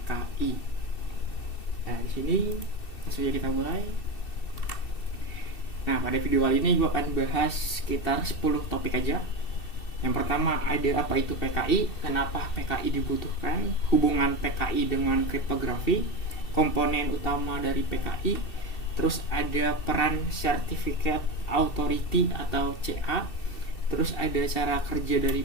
Nah, di sini langsung aja kita mulai. Nah, pada video kali ini gue akan bahas sekitar 10 topik aja. Yang pertama, ada apa itu PKI, kenapa PKI dibutuhkan, hubungan PKI dengan kriptografi, komponen utama dari PKI, terus ada peran Certificate Authority atau CA, terus ada cara kerja dari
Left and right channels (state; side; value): late; right; 2.7 ms